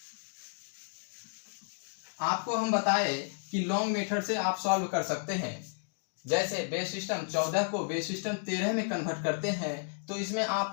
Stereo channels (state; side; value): silent; right; digital silence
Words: आपको हम बताए कि लॉन्ग मेथड से आप सॉल्व कर सकते हैं। जैसे बेस सिस्टम 14 को बेस सिस्टम 13 में कन्वर्ट करते हैं तो इसमें आप